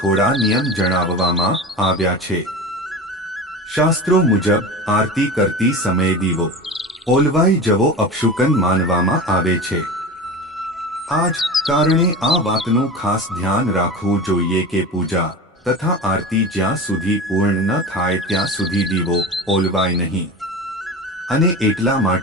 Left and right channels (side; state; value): both; normal; correlation 0.30